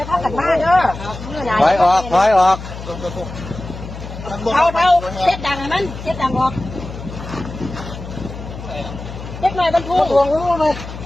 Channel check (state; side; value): noise; left; hum, 11 dB below the sound